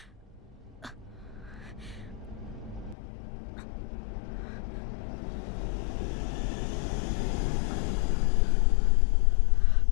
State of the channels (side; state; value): right; drops out; at 3.0 s